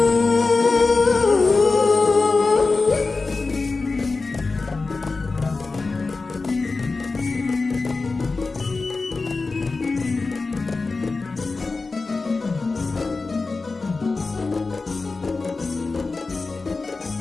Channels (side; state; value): right; quieter; 3.9 dB